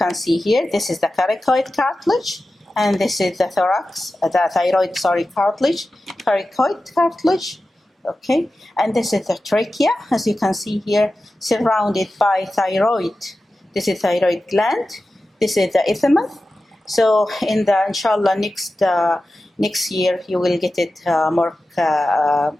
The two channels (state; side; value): normal; both; correlation 0.94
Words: see here, this is the coracoid cartilage, and this is the thyroid cartilage, coracoid cartilage, okay? And this is the trachea, as you can see here, surrounded by thyroid. This is thyroid gland, this is the isthmus. So in the, inshallah, next year, you will get it more